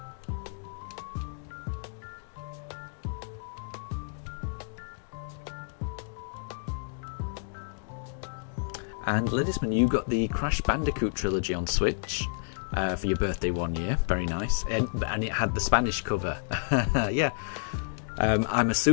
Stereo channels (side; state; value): right; silent; digital silence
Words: And Ledisman, you got the Crash Bandicoot trilogy on Switch for your birthday one year. Very nice. And it had the Spanish cover. Yeah. I'm